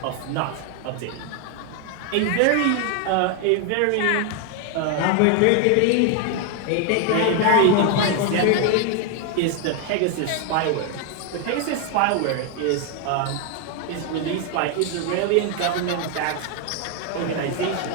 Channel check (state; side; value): different; both; correlation 0.01